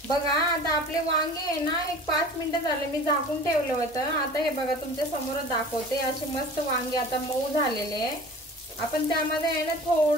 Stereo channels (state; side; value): normal; both; correlation 0.41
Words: बघा, आता आपले वांगे आहे ना एक 5 मिनिटं झाले, मी झाकून ठेवलं होतं। आता हे बघा, तुमच्या समोर दाखवते। असे मस्त वांगे आता मऊ झालेले आहे। आपण त्यामध्ये आहे ना